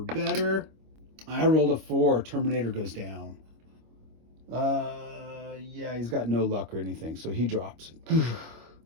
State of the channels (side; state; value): left; late; 25 ms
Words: better. I rolled a 4. Terminator goes down. Yeah, he's got no luck or anything, so he drops. But